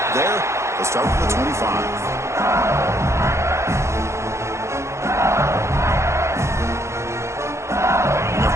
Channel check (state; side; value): late; left; 0.14 ms